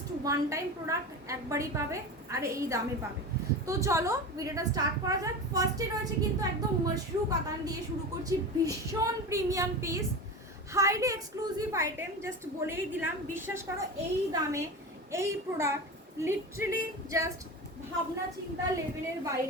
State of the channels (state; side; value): normal; both; correlation 0.27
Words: ওয়ান টাইম প্রোডাক্ট, একবারই পাবে আর এই দামে পাবে। তো চলো ভিডিওটা স্টার্ট করা যাক। ফার্স্টে রয়েছে কিন্তু একদম মাশরু কাতান দিয়ে শুরু করছি, ভীষণ premium piece, highly exclusive item. Just বলেই দিলাম, বিশ্বাস করো এই দামে এই প্রোডাক্ট লিটারালি জাস্ট ভাবনা চিন্তা লেভেলের